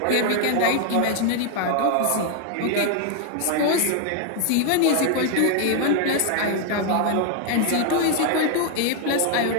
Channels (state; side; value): different; both; correlation 0.00